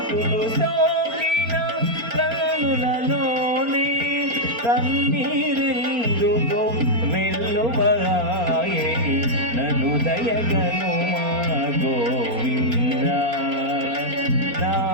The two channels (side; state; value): left; late; 4.3 ms